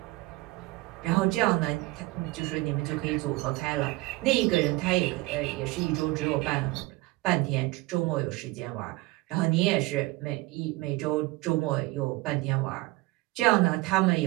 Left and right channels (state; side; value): quieter; left; 21.2 dB